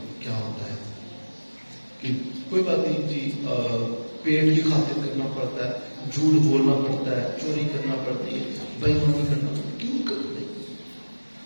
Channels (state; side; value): inverted; both; correlation -1.00